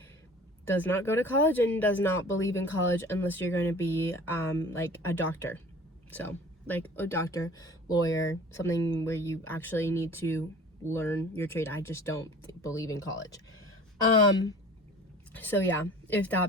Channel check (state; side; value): normal; both; correlation 0.45